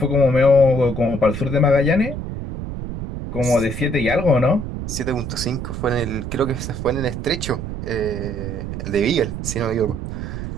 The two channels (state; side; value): noise; right; rumble, 6 dB below the sound